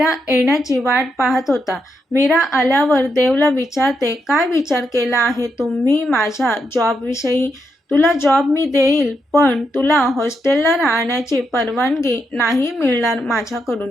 येण्याची वाट पाहत होता. मीरा आल्यावर देवला विचारते, काय विचार केला आहे तुम्ही माझ्या जॉबविषयी? तुला जॉब मी देईल, पण तुला हॉस्टेलला राहण्याची परवानगी नाही मिळणार माझ्याकडून.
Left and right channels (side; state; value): both; normal; correlation 0.82